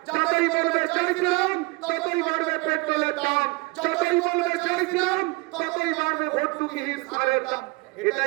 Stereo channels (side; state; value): left; quieter; 25.0 dB